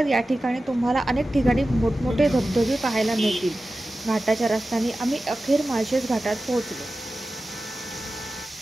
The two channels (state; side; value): normal; both; correlation 0.94